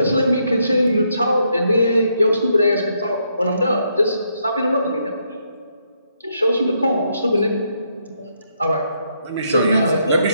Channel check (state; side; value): inverted; both; correlation -0.76